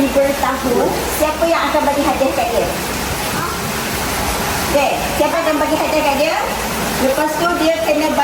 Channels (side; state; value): both; identical; correlation 1.00